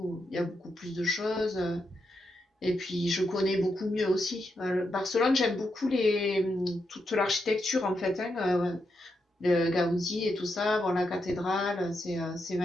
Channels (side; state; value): both; normal; correlation 0.83